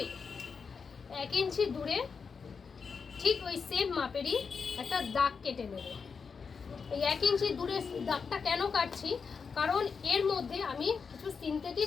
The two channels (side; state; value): right; quieter; 5.6 dB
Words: 1 ইঞ্চি দূরে ঠিক ওই সেম মাপেরই একটা দাগ কেটে নেব। এই 1 ইঞ্চি দূরে দাগটা কেন কাটছি, কারণ এর মধ্যে আমি কিছু